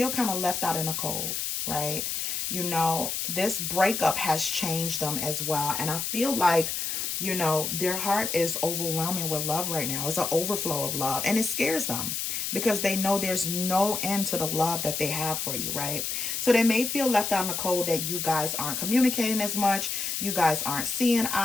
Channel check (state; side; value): noise; left; hiss, 2 dB below the sound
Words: kind of left out in the cold, right? You know, this breakup has changed them as well. And I feel like You know, their heart is overwhelming with love right now. It's an overflow of love, and it scares them because they know there's no end to the love that they have for you, right? So they may feel left out in the cold, that you guys aren't communicating as much, you guys aren't seeing